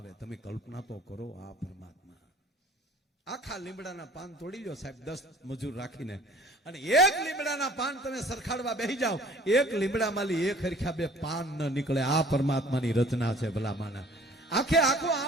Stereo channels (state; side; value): normal; both; correlation 0.52